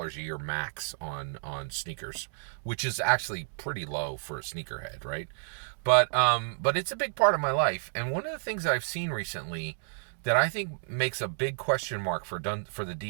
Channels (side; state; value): left; silent; digital silence